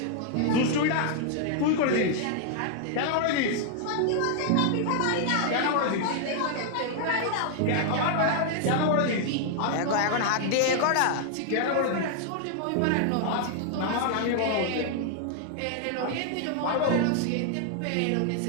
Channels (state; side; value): different; both; correlation 0.00